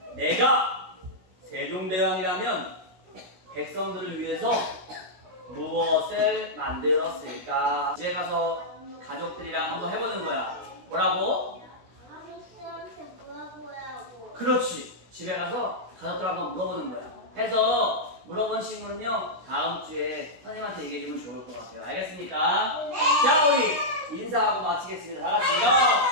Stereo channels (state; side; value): late; left; 16 ms